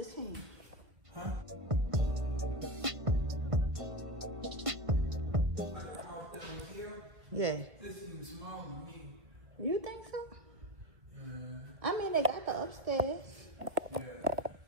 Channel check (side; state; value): left; late; 1.5 ms